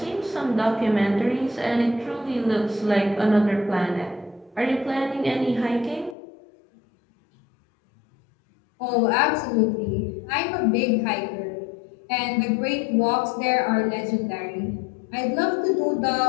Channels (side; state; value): right; drops out; at 6.2 s